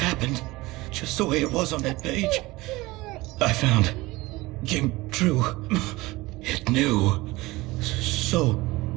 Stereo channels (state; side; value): quieter; left; 20.6 dB